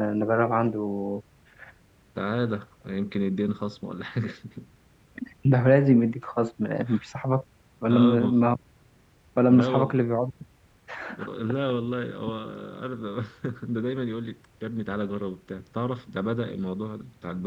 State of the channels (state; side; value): identical; both; correlation 1.00